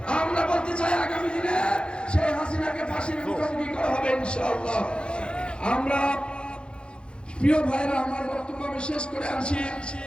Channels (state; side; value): late; right; 0.054 ms